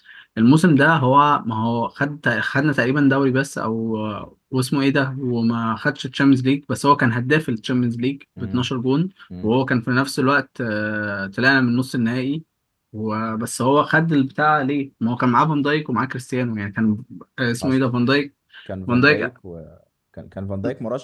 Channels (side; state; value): both; identical; correlation 1.00